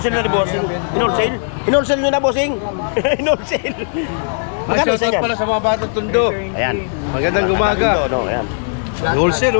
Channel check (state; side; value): silent; right; digital silence